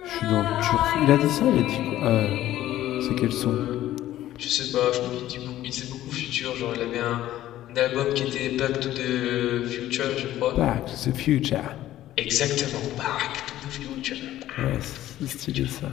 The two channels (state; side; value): quieter; right; 13.7 dB